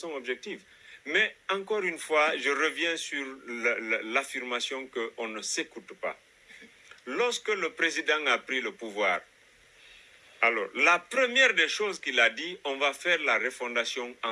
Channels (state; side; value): identical; both; correlation 1.00